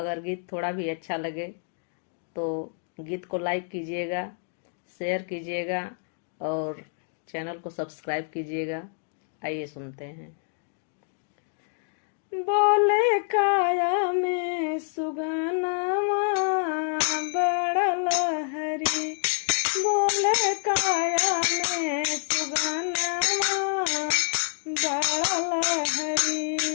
गीत थोड़ा भी अच्छा लगे तो गीत को लाइक कीजिएगा, शेयर कीजिएगा और चैनल को सब्सक्राइब कीजिएगा। आइए सुनते हैं। बोले काया में सुगनमा बड़ा लहरी, बोले काया में सुगनमा बड़ा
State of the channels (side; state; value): right; silent; digital silence